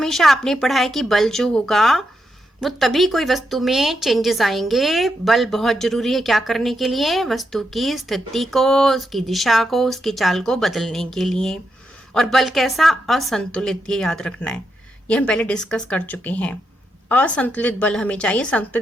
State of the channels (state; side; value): normal; both; correlation 0.83